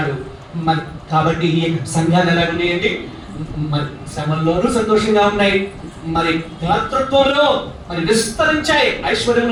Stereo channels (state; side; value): identical; both; correlation 1.00